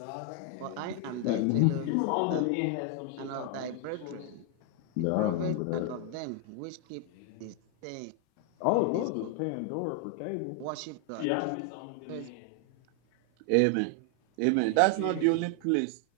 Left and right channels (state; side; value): different; both; correlation 0.00